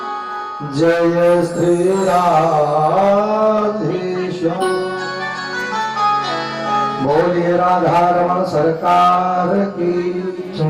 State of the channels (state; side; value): identical; both; correlation 1.00